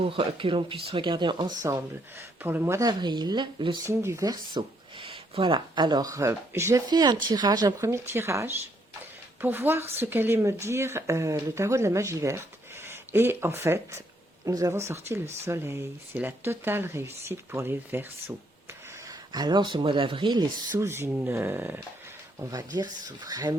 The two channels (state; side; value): normal; both; correlation 0.71